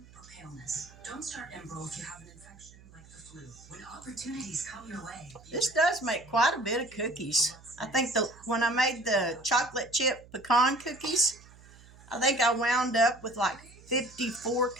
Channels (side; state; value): right; noise; hum, 23 dB below the sound